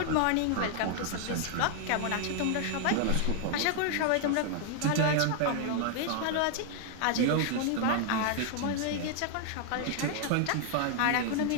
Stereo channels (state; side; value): different; both; correlation 0.00